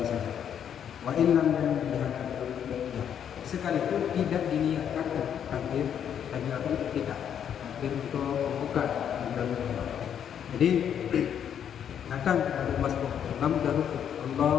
saja. Wa in lam yanbiha, sekalipun tidak diniatkan takbir kita, takbir untuk membuka. Jadi datang dari masjid, imam sudah rukuk,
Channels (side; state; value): right; quieter; 8.8 dB